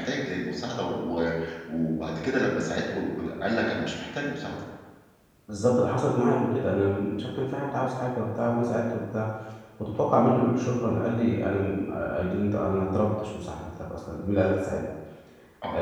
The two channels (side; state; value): both; identical; correlation 1.00